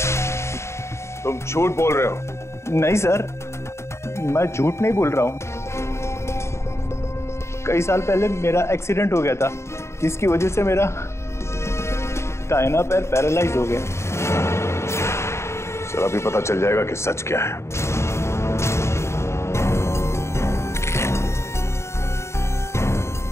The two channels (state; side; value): late; right; 0.13 ms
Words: तुम झूठ बोल रहे हो। नहीं सर, मैं झूठ नहीं बोल रहा हूँ। कई साल पहले मेरा एक्सीडेंट हो गया था, जिसकी वजह से मेरा दाहिना पैर पैरालाइज हो गया। सर अभी पता चल जाएगा कि सच क्या है।